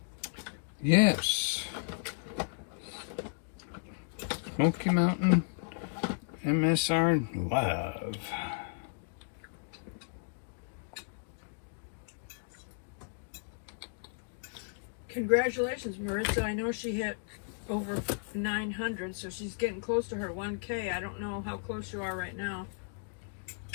Yes. Smoky Mountain MSR Love. Congratulations, Maritza. I know she hit over 900, so she's getting close to her 1K. I don't know how close you are right now.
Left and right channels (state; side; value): silent; right; digital silence